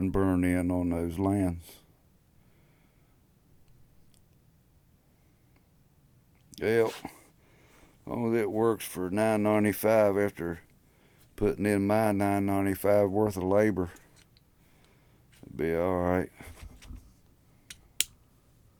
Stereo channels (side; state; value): both; identical; correlation 1.00